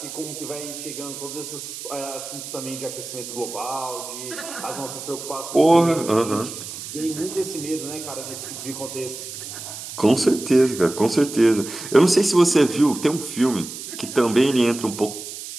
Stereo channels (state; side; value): noise; right; hiss, 10 dB below the sound